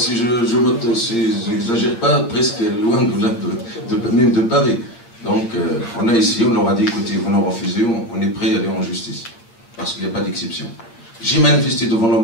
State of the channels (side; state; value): right; late; 8.6 ms